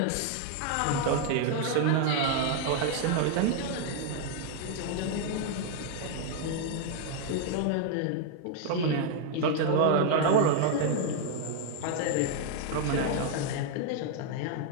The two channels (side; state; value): both; different; correlation 0.00